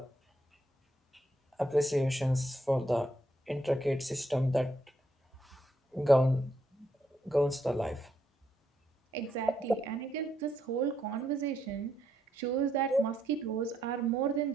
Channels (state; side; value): normal; both; correlation 0.76